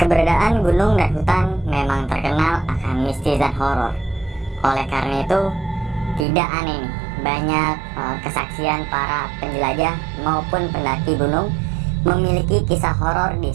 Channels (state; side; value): drops out; left; at 6.2 s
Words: Keberadaan gunung dan hutan memang terkenal akan mistis dan horor. Oleh karena itu, tidak aneh nih, banyak kesaksian para penjelajah maupun pendaki gunung memiliki kisah horor di